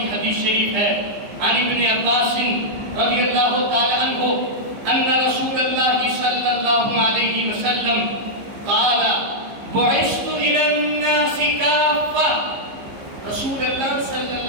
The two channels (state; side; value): late; left; 15 ms